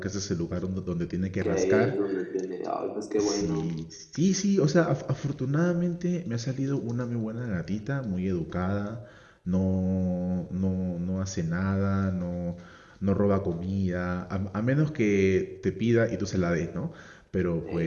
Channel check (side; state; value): both; identical; correlation 1.00